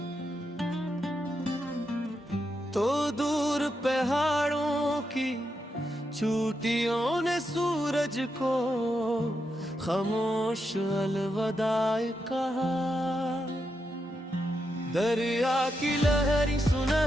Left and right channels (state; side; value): normal; both; correlation 0.84